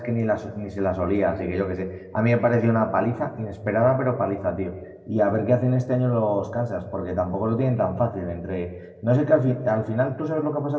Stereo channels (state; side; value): identical; both; correlation 1.00